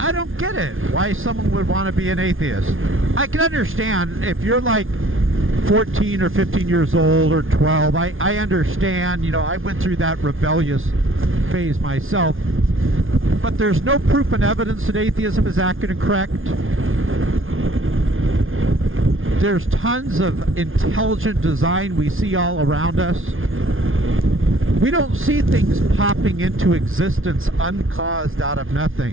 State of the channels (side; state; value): left; late; 0.59 ms